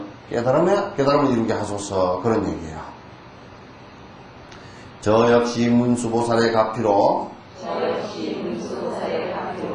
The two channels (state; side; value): identical; both; correlation 1.00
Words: 깨달음을 이루게 하소서 그런 얘기예요. 저 역시 문수보살의 가피로